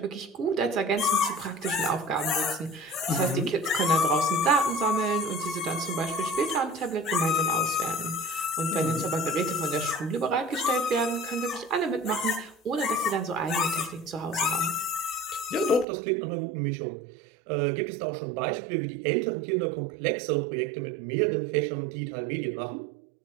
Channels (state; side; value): drops out; left; at 15.9 s